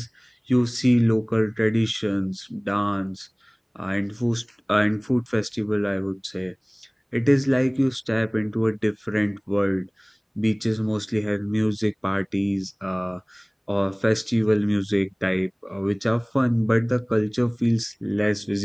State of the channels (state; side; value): identical; both; correlation 1.00